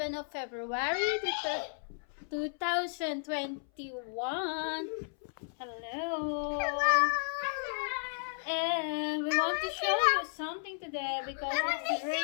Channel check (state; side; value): silent; right; 55 dB below the other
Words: of February 2021. Hello. And we want to show you something today because it's